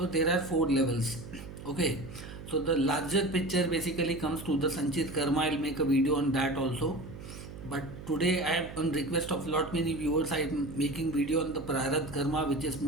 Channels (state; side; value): noise; right; hum, 12 dB below the sound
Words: there are four levels. Okay, so the larger picture basically comes to the Sanchit karma. I'll make a video on that also, but today I am on request of lot many viewers, I am making video on the Prarabdha karma, which is